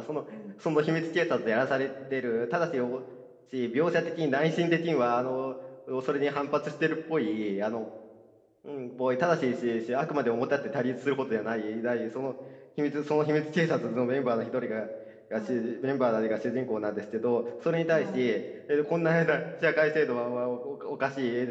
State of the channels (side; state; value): both; identical; correlation 1.00